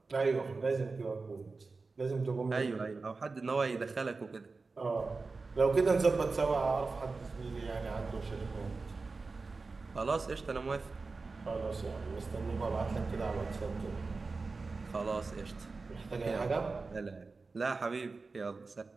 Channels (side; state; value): left; quieter; 4.0 dB